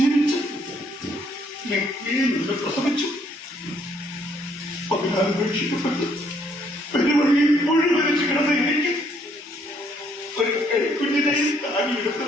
നിന്ന് പ്രസവിച്ചു. 14 ഉപേക്ഷിക്കപ്പെട്ട് പെരുവഴിയിൽ മുഴുവനിച്ച് കിടന്ന എനിക്ക് ഒരു കൈക്കുഞ്ഞിനെയും താങ്ങിയെടുത്ത്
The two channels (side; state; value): both; normal; correlation 0.67